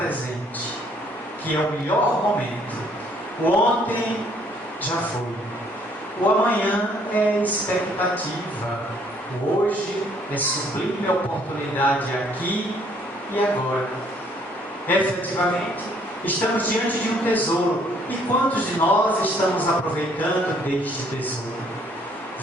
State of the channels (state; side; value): normal; both; correlation 0.64